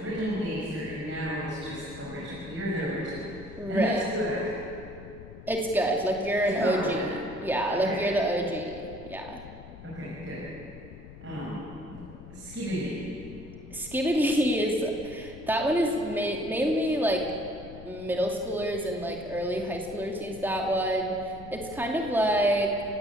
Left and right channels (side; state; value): left; noise; rumble, 15 dB below the sound